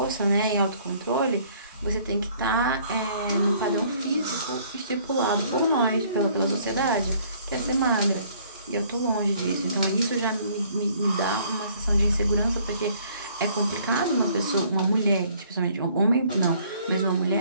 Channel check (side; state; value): both; inverted; correlation -0.60